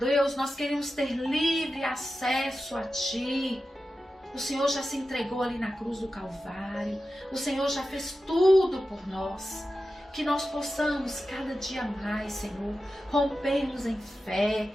nós queremos ter livre acesso a Ti. O Senhor já se entregou ali na cruz do Calvário. O Senhor já fez tudo por nós. Que nós possamos cada dia mais, Senhor, rompermos em fé,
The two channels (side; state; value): both; normal; correlation 0.92